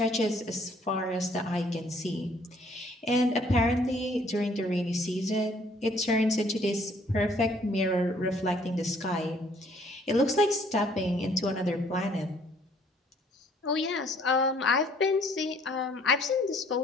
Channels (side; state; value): both; normal; correlation 0.61